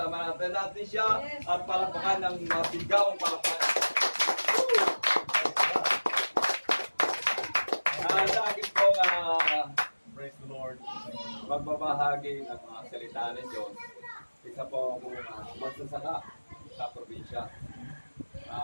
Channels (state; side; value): inverted; both; correlation -1.00